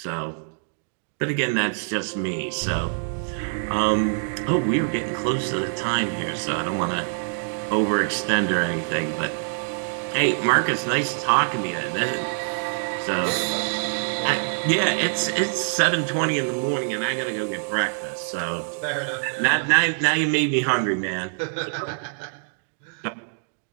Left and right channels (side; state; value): left; silent; digital silence